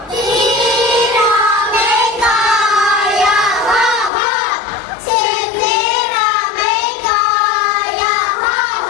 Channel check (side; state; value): right; drops out; at 4.1 s